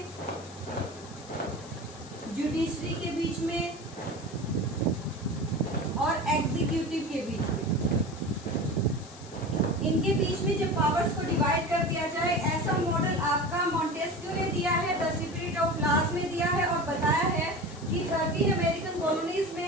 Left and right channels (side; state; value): left; noise; hiss, 19 dB below the sound